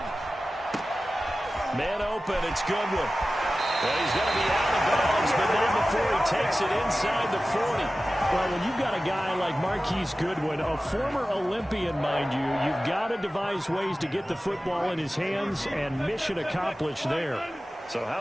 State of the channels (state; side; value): normal; both; correlation 0.95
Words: Man open, it's Goodwin. Well, he's going to be out of bounds, but not before he takes it inside the 40. Well, when you've got a guy like Marquise Goodwin, a former Olympian, mind you, you've got to devise ways to get the football in his hands, and mission accomplished there. So how